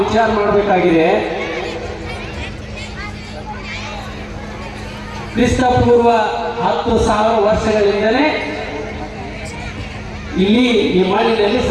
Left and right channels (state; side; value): identical; both; correlation 1.00